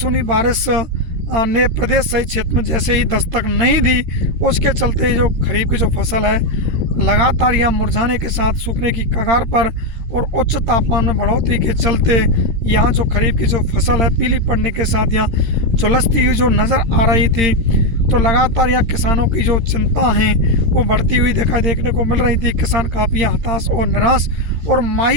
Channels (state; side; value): late; left; 13 ms